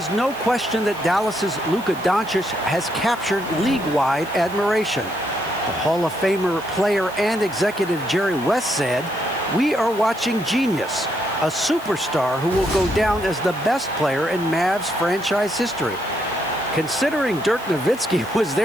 no question that Dallas's Luka Doncic has captured league-wide admiration. The Hall of Famer player and executive Jerry West said, "We are watching genius, a superstar who will go down as the best player in Mavs franchise history." Considering Dirk Nowitzki was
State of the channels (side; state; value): right; noise; hiss, 20 dB below the sound